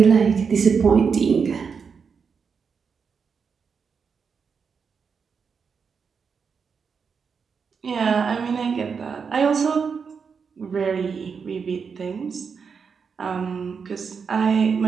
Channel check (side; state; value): left; quieter; 5.9 dB